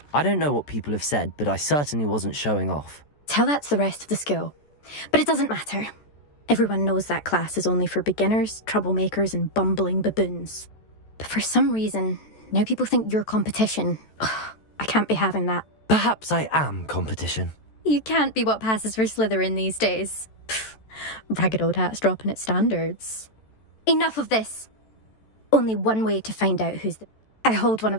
I don't know what people have said, but I certainly wasn't showing off. Tell that to the rest of the school. But it doesn't matter. Everyone knows that class is only for beginners, troublemakers, and bumbling baboons. But for some reason, now people think you're competition. Ugh, I can't be having that. Perhaps I am competition. You can't be what passes for Slytherin these days. Pfft, ragged old hat's dropping its standards. Enough of this. Only one way to find out who's the... I hold one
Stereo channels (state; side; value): late; right; 14 ms